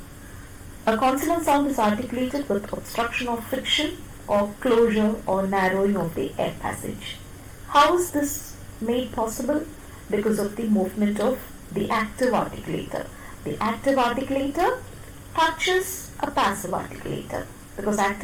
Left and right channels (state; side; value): identical; both; correlation 1.00